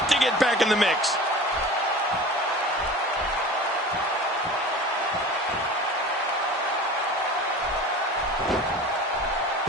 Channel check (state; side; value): normal; both; correlation 0.38